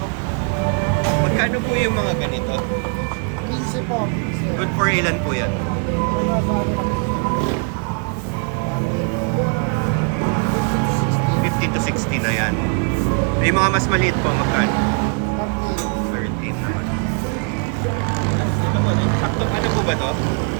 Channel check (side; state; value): left; quieter; 39.4 dB